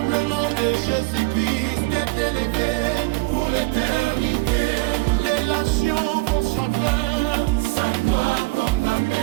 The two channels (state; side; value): quieter; left; 24.3 dB